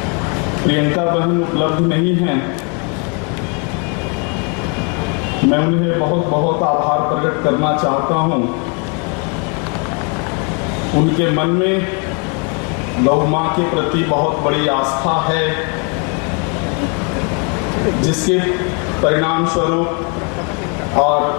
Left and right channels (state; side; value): quieter; right; 36.3 dB